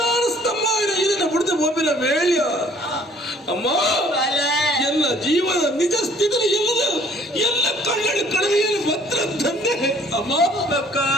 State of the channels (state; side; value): normal; both; correlation 0.56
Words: ಸ್ತಂಭ ಇದನ್ನ ಬಿಡದೆ ಒಬ್ಬಿನ ವೇಳ್ಯ ಅಮ್ಮ ಎಲ್ಲ ಜೀವನ ನಿಜ ಸ್ಥಿತಿ ಎಲ್ಲ ಕಣ್ಣಲ್ಲಿ ಕಡವೆಯಲ್ಲಿ ಭದ್ರ ತಂದೆ ಅಮ್ಮ